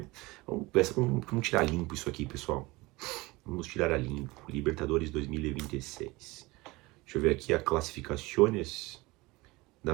Vamos tirar limpo isso aqui, pessoal. Vamos tirar a limpo. Libertadores 2026. Deixa eu ver aqui a classificações.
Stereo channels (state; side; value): quieter; left; 22.1 dB